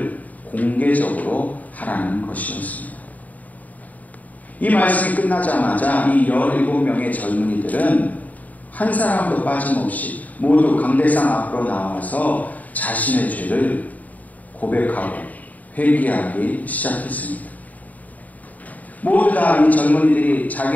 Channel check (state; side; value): late; right; 0.075 ms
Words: 공개적으로 하라는 것이었습니다. 이 말씀이 끝나자마자 이 17명의 젊은이들은 한 사람도 빠짐없이 모두 강대상 앞으로 나와서 자신의 죄를 고백하고 회개하기 시작했습니다. 모두 다 이 젊은이들이